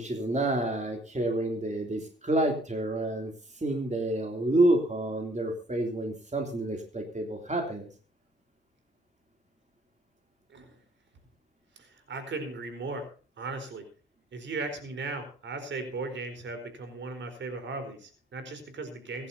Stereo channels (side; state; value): both; normal; correlation 0.61